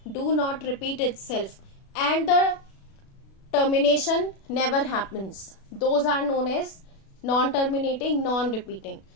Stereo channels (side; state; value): right; late; 36 ms